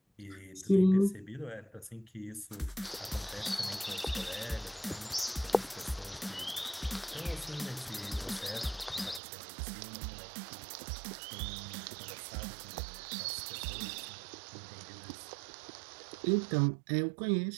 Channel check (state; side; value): drops out; left; at 9.2 s